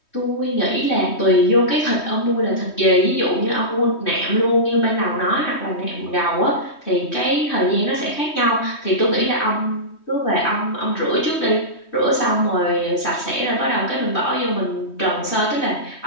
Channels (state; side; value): late; right; 3.2 ms